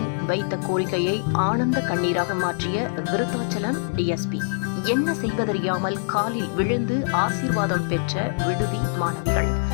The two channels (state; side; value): silent; right; 63 dB below the other